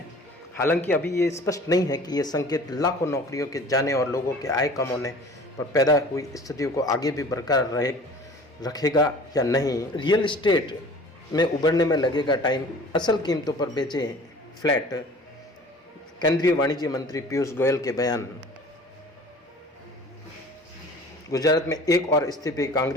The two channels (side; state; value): both; normal; correlation 0.45